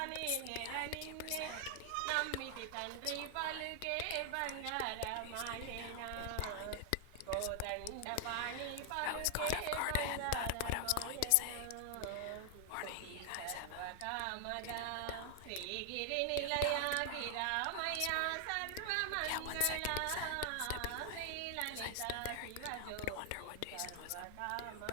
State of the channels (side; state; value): both; different; correlation 0.00